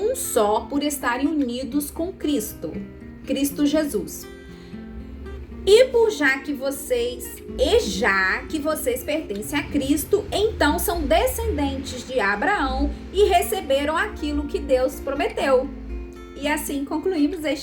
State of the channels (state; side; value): identical; both; correlation 1.00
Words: só por estarem unidos com Cristo Jesus. Já que vocês pertencem a Cristo, então são descendentes de Abraão e receberam aquilo que Deus prometeu. E assim concluímos